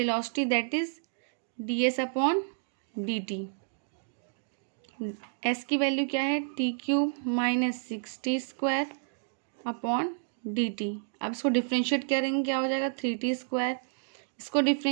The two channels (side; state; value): left; silent; digital silence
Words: that is ds upon dt. s की value क्या है, T cube minus 6t² upon D T. अब इसको differentiate करेंगे, क्या हो जाएगा 3t². इसको